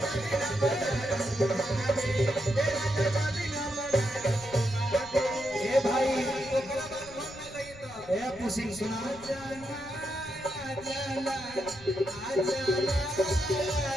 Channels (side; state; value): left; noise; rumble, 20 dB below the sound